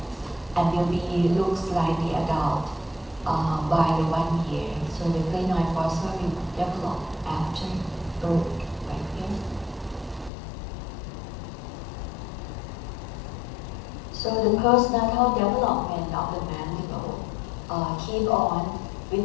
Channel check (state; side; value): drops out; right; at 10.3 s